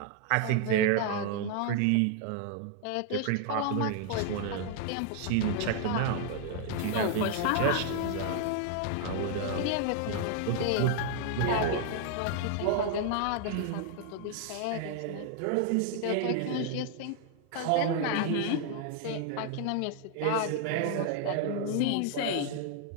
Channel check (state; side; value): different; both; correlation 0.00